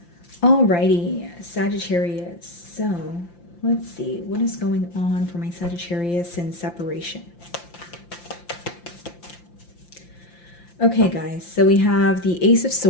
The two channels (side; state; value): right; late; 5.8 ms